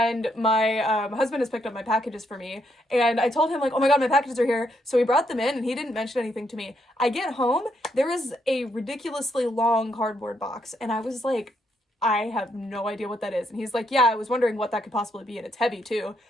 my husband has picked up my packages for me. And I told him like, oh my God, my packages are here. So he brought them in and he didn't mention anything to me. I get home, there is a ridiculously long cardboard box. And I was like, I have no idea what that is. And he's like, yeah, I was wondering what that could possibly be. And it's heavy too.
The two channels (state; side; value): normal; both; correlation 0.76